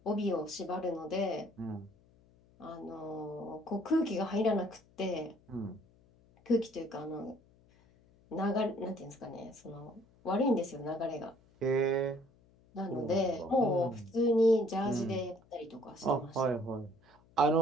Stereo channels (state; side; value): noise; left; hum, 30 dB below the sound